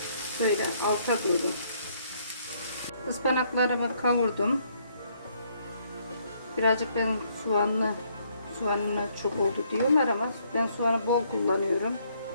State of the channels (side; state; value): both; inverted; correlation -0.69